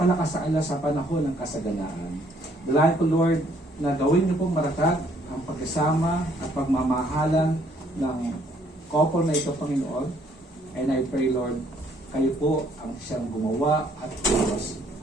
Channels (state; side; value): normal; both; correlation 0.65